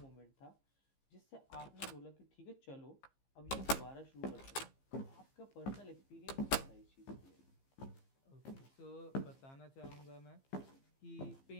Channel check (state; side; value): late; right; 15 ms